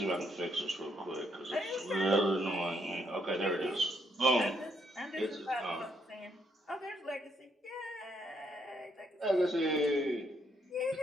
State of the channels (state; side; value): normal; both; correlation 0.72